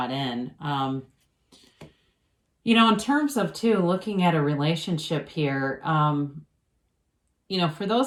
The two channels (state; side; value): identical; both; correlation 1.00